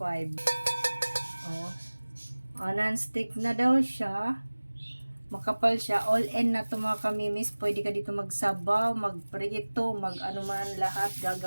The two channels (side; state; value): both; inverted; correlation -1.00